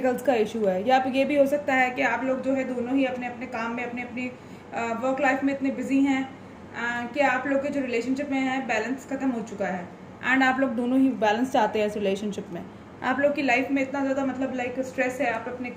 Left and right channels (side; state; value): both; identical; correlation 1.00